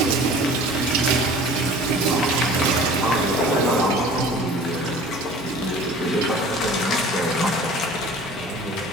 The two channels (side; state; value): both; normal; correlation 0.44